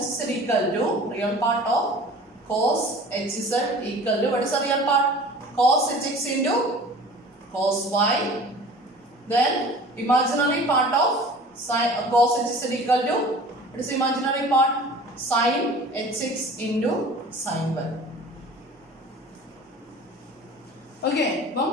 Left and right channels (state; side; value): normal; both; correlation 0.43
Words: equal to real part of cos hz equal to, what is the real part? Cos hx into cos y. Then imaginary part of sin cos hz equal to, what is the imaginary part? Sin hx into sin y. Okay, അപ്പം